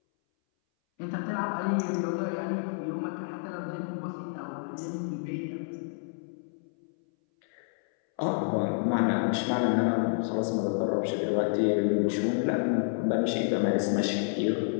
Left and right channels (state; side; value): silent; right; 58 dB below the other